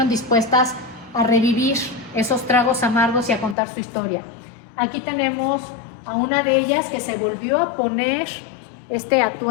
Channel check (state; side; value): drops out; right; at 3.6 s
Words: dispuestas a revivir esos tragos amargos y a contar su historia. Aquí tenemos a una de ellas que se volvió a poner este